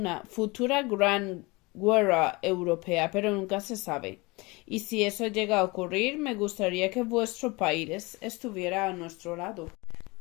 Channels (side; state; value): right; quieter; 24.7 dB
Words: gran guerra europea, pero nunca se sabe. Y si eso llega a ocurrir, me gustaría que vuestro país estuviera a nuestro lado.